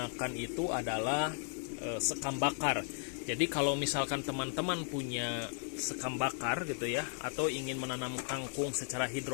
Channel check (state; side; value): silent; right; 54 dB below the other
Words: itu adalah sekam bakar. Jadi kalau misalkan teman-teman punya sekam bakar gitu ya, atau ingin menanam kangkung secara